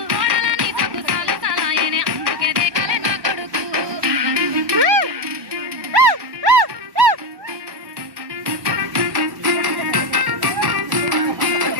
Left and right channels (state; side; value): late; left; 1.2 ms